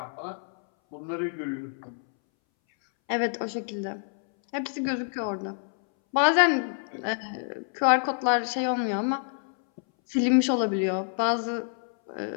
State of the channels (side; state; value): right; silent; 60 dB below the other